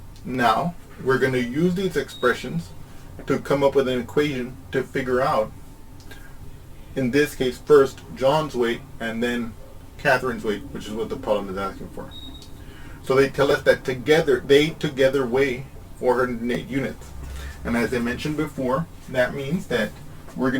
Now, we're going to use these expressions to come up with an equation to figure out, in this case, first John's weight and then Catherine's weight, which is what the problem is asking for. So they tell us that they together weigh 408 units. And as I mentioned before, that means that we're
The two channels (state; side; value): identical; both; correlation 1.00